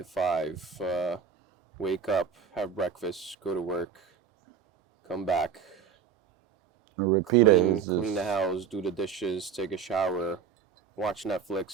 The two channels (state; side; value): quieter; left; 7.0 dB